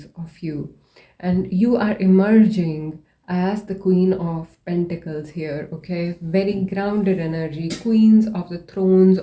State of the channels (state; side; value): identical; both; correlation 1.00